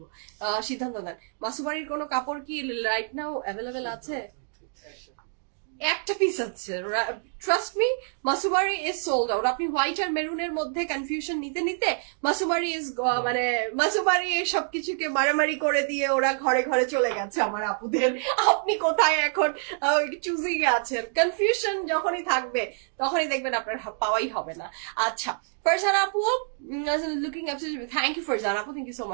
সিদ্ধান্ত দেন। মাসুমারির কোনো কাপড় কি রাইট নাও অ্যাভেলেবেল আছে? একটা পিস আছে, trust me, Mausummery is sold out. আপনি হোয়াইট আর মেরুনের মধ্যে কনফিউশন নিতে নিতে মাসুমারি ইজ মানে মাসুমারি সবকিছুকে মারামারি করে দিয়ে ওরা ঘরে ঘরে চলে গেছে আমার আপুদের। আপনি কোথায় এখন চুজিং এ আছেন? কনফিউশন যখনই থাকবে তখনই দেখবেন আপনার পাওয়াই হবে না। আচ্ছা, ফারজানা আপু, looking absolutely, thank you Farzana আপু, থ্যাংক ইউ সো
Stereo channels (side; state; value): left; silent; 60 dB below the other